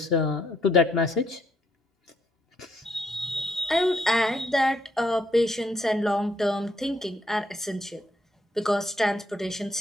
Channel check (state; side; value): normal; both; correlation 0.72